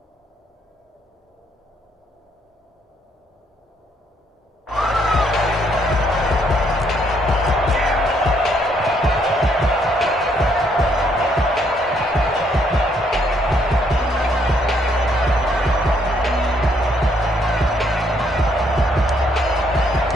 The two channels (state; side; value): normal; both; correlation 0.70